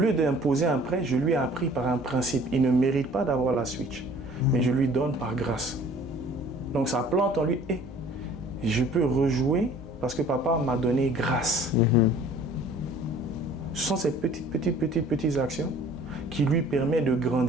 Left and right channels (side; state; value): both; normal; correlation 0.51